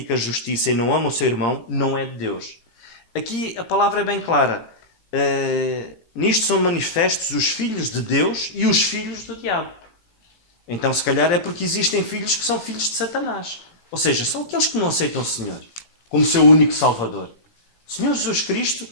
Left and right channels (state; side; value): late; right; 17 ms